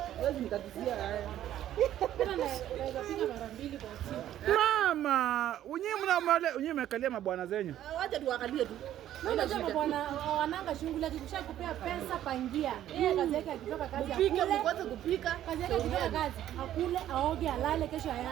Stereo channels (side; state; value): left; quieter; 12.0 dB